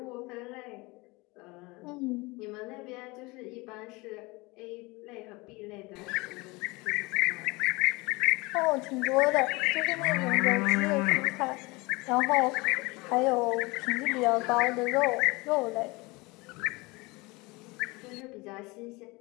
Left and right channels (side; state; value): right; quieter; 24.3 dB